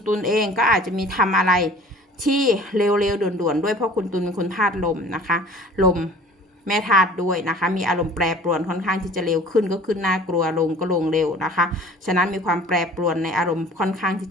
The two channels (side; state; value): both; normal; correlation 0.47